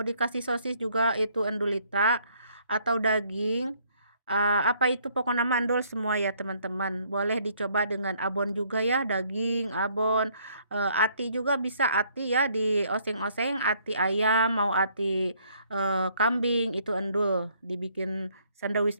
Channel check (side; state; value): both; inverted; correlation -0.65